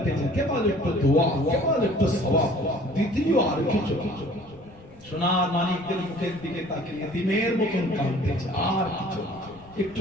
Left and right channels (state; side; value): noise; left; rumble, 24 dB below the sound